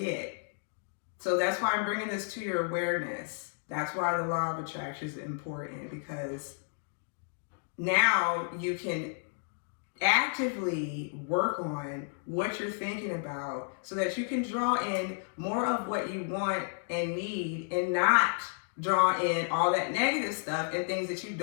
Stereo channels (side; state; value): right; silent; 57 dB below the other